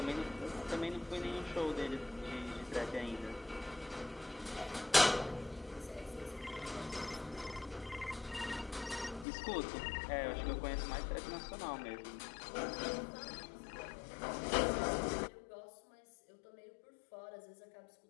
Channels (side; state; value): right; drops out; at 9.2 s